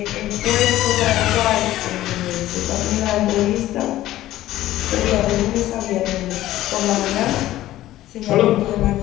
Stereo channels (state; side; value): quieter; right; 14.7 dB